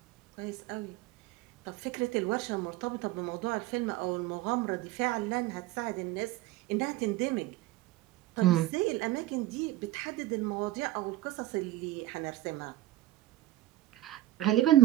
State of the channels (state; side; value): quieter; left; 15.7 dB